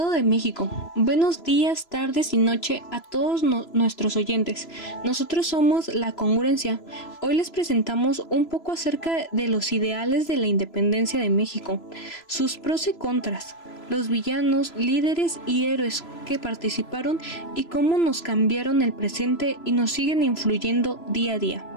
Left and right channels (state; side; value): late; right; 3.0 ms